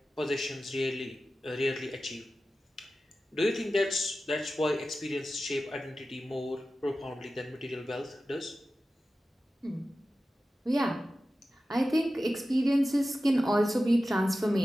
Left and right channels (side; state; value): both; normal; correlation 0.94